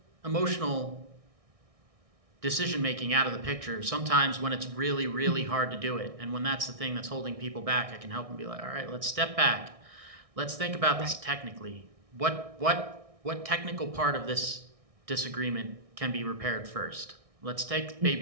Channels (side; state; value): left; late; 1.6 ms